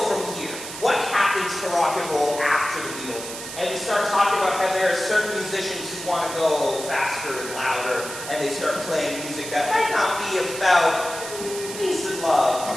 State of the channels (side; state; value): right; noise; hiss, 10 dB below the sound